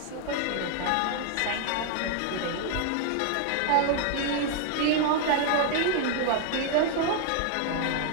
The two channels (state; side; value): different; both; correlation 0.00